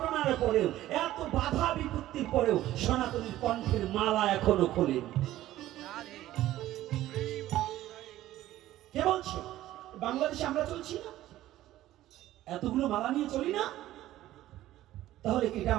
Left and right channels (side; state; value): left; quieter; 14.5 dB